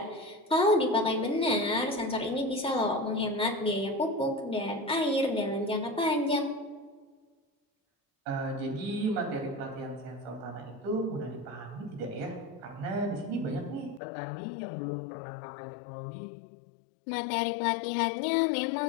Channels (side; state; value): right; drops out; at 14.0 s